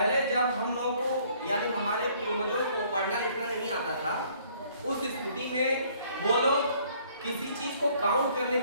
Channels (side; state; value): both; inverted; correlation -0.61